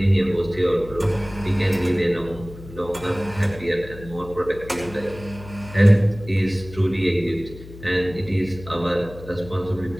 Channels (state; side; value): noise; left; hum, 16 dB below the sound